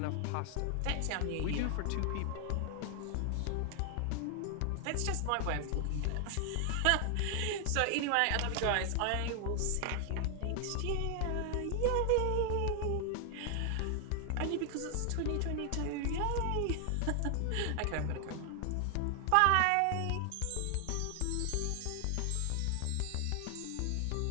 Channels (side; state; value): both; different; correlation 0.00